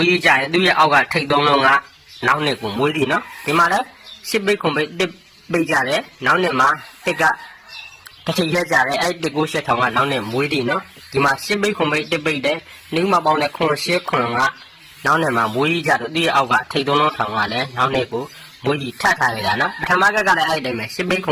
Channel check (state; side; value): identical; both; correlation 1.00